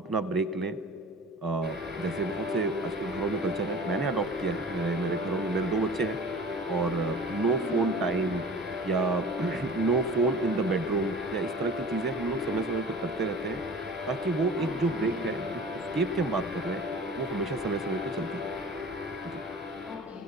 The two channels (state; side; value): normal; both; correlation 0.40